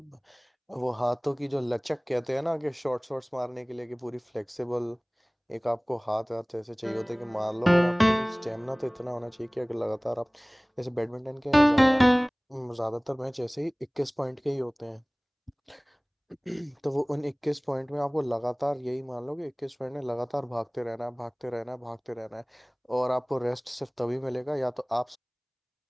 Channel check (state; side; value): identical; both; correlation 1.00